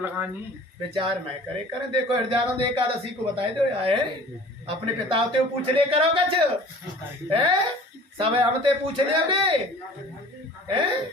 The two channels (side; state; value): both; normal; correlation 0.46